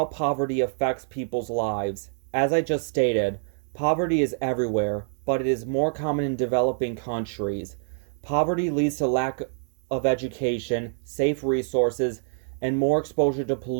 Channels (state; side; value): silent; left; digital silence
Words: poverty affects people's lives. As I just stated, poverty is everywhere, but it is more common in developing countries. Poverty leads to lack of education, safe resources, and more exposure to